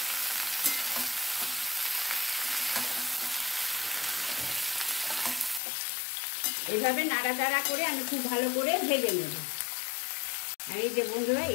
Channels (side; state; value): right; drops out; at 5.6 s